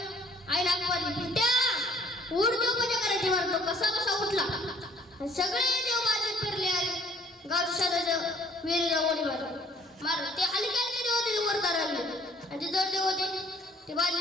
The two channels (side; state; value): both; normal; correlation 0.58